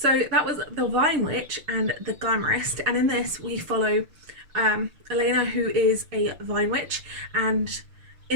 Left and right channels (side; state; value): left; late; 6.5 ms